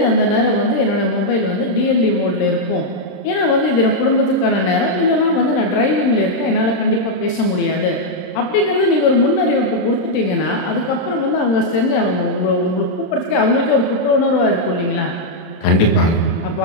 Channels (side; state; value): right; late; 27 ms